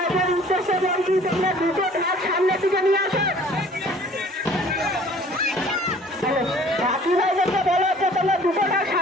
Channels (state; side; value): normal; both; correlation 0.52